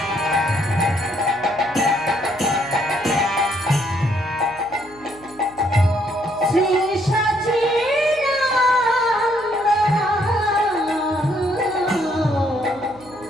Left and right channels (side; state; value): left; noise; hum, 24 dB below the sound